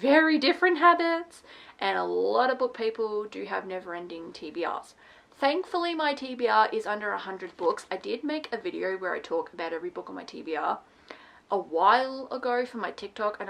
very different habits, and a lot of book people do have never-ending TBRs. Thankfully, my TBR is under 100 books. I did make a video where I talk about every book on my TBR a while ago for my TikTok, and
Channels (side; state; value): both; identical; correlation 1.00